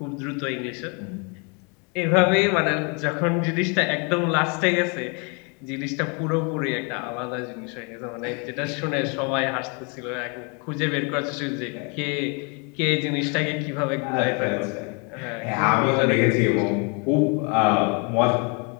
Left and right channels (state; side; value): quieter; right; 34.2 dB